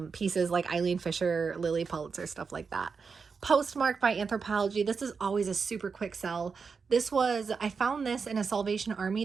pieces like Eileen Fisher, Lily Pulitzer, stuff like that. Postmark by Anthropologie. This is always a super quick sell. I found this in a Salvation Army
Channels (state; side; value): quieter; left; 5.3 dB